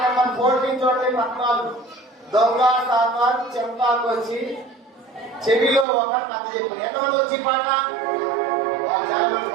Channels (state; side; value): drops out; left; at 5.9 s